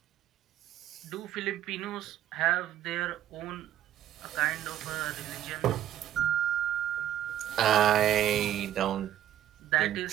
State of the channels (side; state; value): left; quieter; 11.7 dB